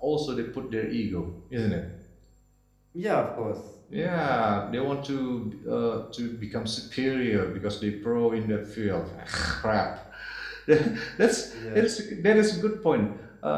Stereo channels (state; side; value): identical; both; correlation 1.00